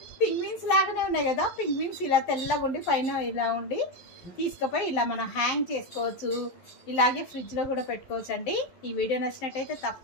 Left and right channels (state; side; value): late; right; 11 ms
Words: పింగ్విన్స్ లాగానే ఉన్నాయి కదా. పింగ్విన్స్ ఇలా తెల్లగా ఉండి పైన ఇలా ఉండి తీసుకుపోయి ఇలా మనం హ్యాంగ్ చేసుకోవచ్చు. ఇలాగే ఫ్రిడ్జ్లో కూడా పెట్టుకోవచ్చు అండి. ఈ వీడియో నచ్చినట్టయితే